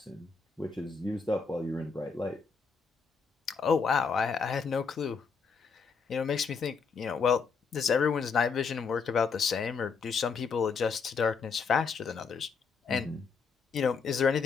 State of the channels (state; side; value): quieter; right; 5.3 dB